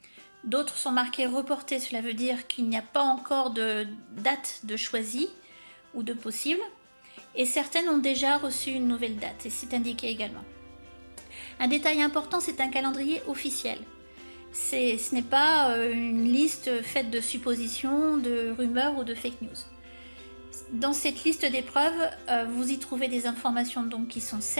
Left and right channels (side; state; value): both; inverted; correlation -1.00